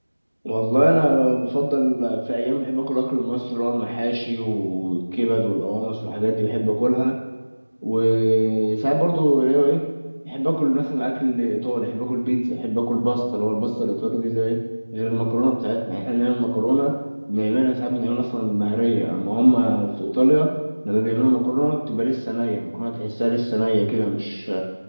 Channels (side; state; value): both; inverted; correlation -1.00